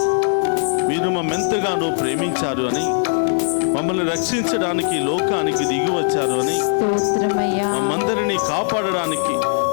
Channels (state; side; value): silent; right; digital silence